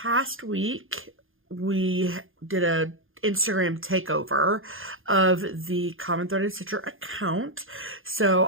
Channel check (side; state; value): left; late; 0.59 ms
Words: week, we did a Instagram takeover of the Common Threaded Stitcher account.